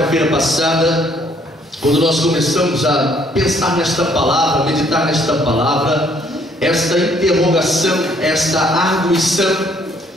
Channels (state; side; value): normal; both; correlation 0.64